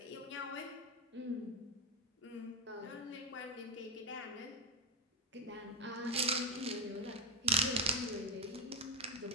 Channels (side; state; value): both; normal; correlation 0.06